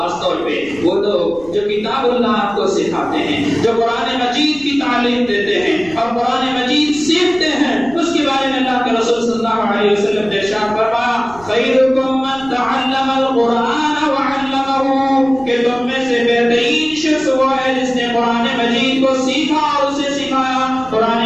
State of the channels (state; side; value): noise; right; rumble, 21 dB below the sound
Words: طور پہ وہ لوگ جو کتاب اللہ کو سکھاتے ہیں، جو قرآن مجید کی تعلیم دیتے ہیں اور قرآن مجید سیکھتے ہیں، اس کے بارے میں اللہ کے رسول صلی اللہ علیہ وسلم نے ارشاد فرمایا خیرکم من تعلم القرآن وعلمہ، کہ تم میں سے بہترین شخص وہ ہے جس نے قرآن مجید کو سیکھا اور اسے سکھایا، قرآن